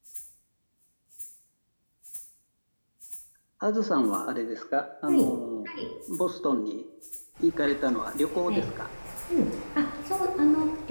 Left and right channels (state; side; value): inverted; both; correlation -1.00